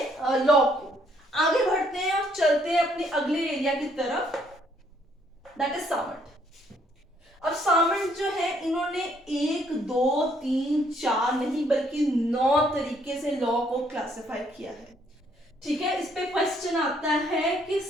लॉ को। आगे बढ़ते हैं और चलते हैं अपने अगले एरिया की तरफ, दैट इज सामंट। अब सामंट जो है इन्होंने 1 2 3 4 नहीं बल्कि 9 तरीके से लॉ को क्लासिफाई किया है। ठीक है, इस पे क्वेश्चन आता है कि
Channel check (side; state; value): both; normal; correlation 0.67